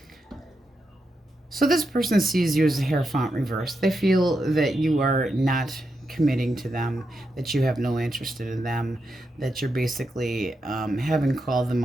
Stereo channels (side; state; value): both; normal; correlation 0.85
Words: So this person sees you as a Hierophant reverse. They feel that you are not committing to them, that you have no interest in them, that you're basically having called them